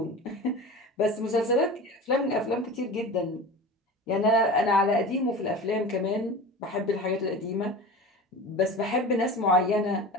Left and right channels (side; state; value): both; normal; correlation 0.33